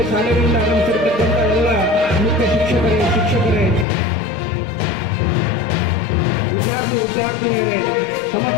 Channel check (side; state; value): right; drops out; at 3.9 s